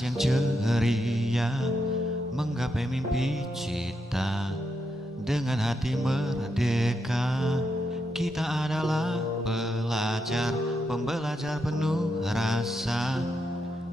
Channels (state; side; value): normal; both; correlation 0.83